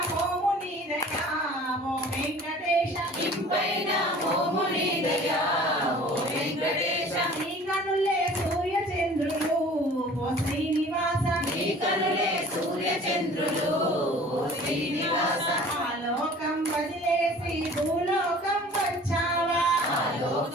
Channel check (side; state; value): both; normal; correlation 0.47